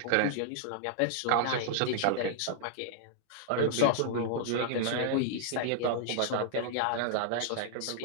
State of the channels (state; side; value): different; both; correlation -0.01